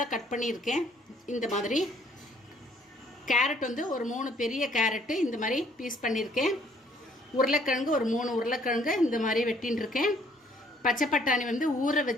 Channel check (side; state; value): both; normal; correlation 0.63